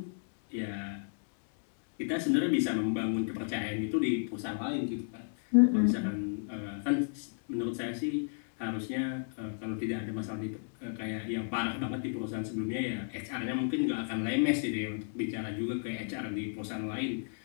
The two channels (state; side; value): silent; right; digital silence